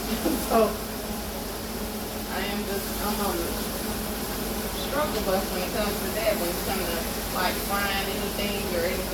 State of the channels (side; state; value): both; identical; correlation 1.00